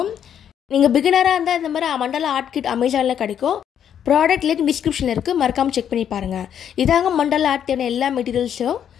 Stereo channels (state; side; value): quieter; right; 9.1 dB